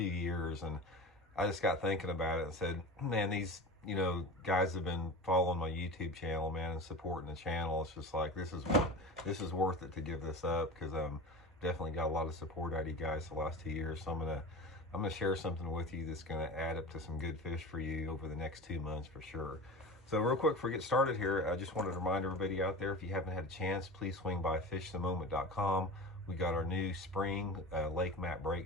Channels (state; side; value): normal; both; correlation 0.31